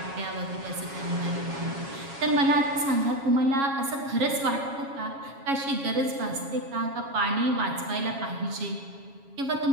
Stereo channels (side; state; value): left; late; 7.3 ms